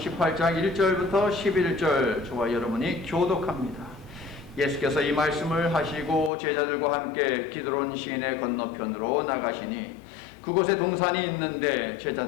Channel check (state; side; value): drops out; right; at 6.3 s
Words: 1절부터 11절 저와 여러분이 교독합니다. 예수께서 이 말씀을 하시고 제자들과 함께 기드론 시내 건너편으로 나가시니 그곳에 동산이 있는데